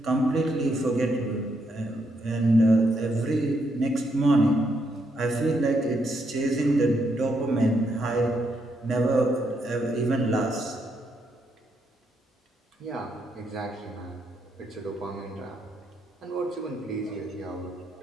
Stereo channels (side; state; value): both; normal; correlation 0.77